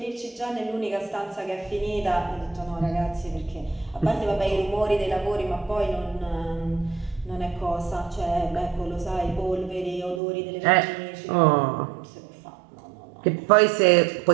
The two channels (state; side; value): drops out; left; at 10.2 s